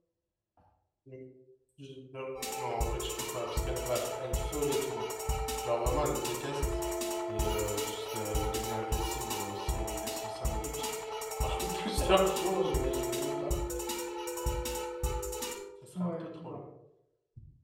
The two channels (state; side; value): identical; both; correlation 1.00